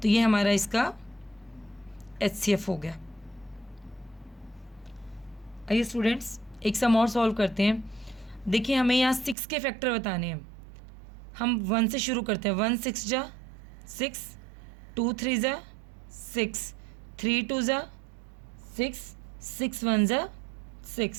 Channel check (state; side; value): drops out; left; at 9.3 s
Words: तो ये हमारा इसका HCF हो गया। आइए स्टूडेंट्स, एक सम और सॉल्व करते हैं। देखिए, हमें यहाँ 6 के फैक्टर बताने हैं। हम 1 से शुरू करते हैं। 1 6 ज़ा 6, 2 3 ज़ा 6, 3 2 ज़ा 6, 6 1 ज़ा